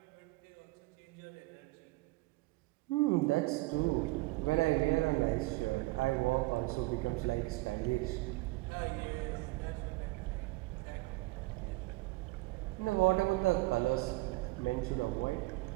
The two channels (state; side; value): quieter; left; 21.8 dB